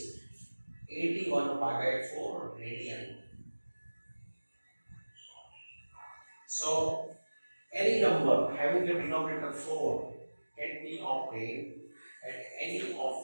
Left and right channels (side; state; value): both; inverted; correlation -1.00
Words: 81 pi by 4 radian. So any number having the denominator 4 can be obtained at any